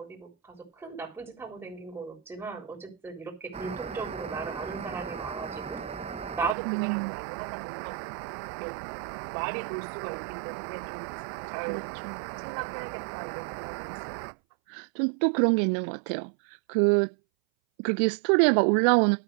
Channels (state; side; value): drops out; left; at 6.6 s